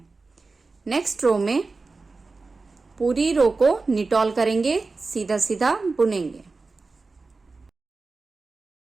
नेक्स्ट रो में पूरी रो को निटॉल करेंगे, सीधा सीधा बुनेंगे।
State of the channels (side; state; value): left; quieter; 3.9 dB